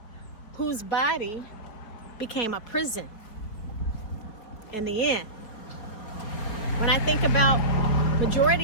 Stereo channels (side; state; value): right; late; 4.7 ms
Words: whose body became a prison in the end. When I think about